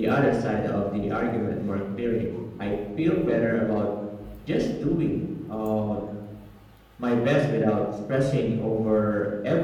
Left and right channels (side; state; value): both; identical; correlation 1.00